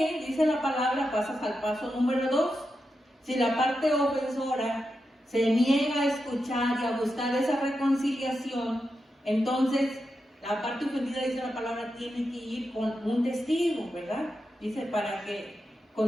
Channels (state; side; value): normal; both; correlation 0.88